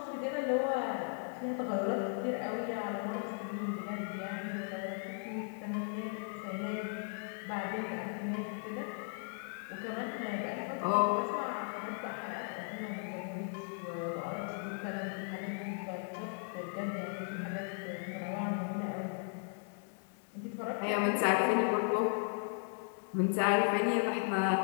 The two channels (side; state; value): right; silent; 53 dB below the other